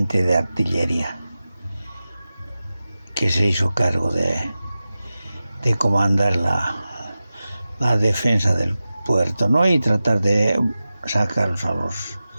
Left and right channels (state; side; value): inverted; both; correlation -0.94